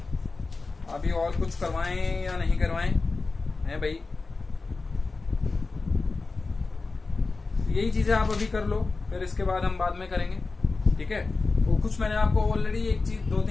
अभी और कुछ करवाएं या नहीं करवाएं हैं भाई, यही चीजें आप अभी कर लो, फिर इसके बाद हम बाद में करेंगे, ठीक है। तो कुछ मैंने आपको ऑलरेडी एक चीज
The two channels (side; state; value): right; quieter; 3.9 dB